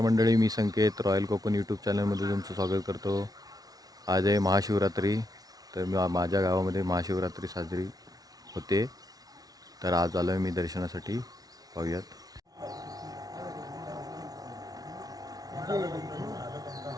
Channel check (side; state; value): left; late; 0.18 ms